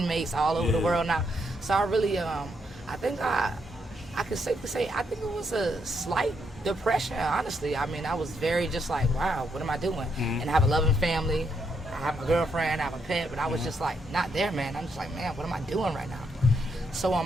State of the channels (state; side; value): normal; both; correlation 0.77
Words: all over the world now. So I really, I think I could safely say, I think it was a slight depression, honestly. I mean, I was very just like, wow, what am I doing? And I have a loving family, I have a girlfriend, I have a pet, but I was just like, not there, man. I'm just like, man, what am I doing right now? So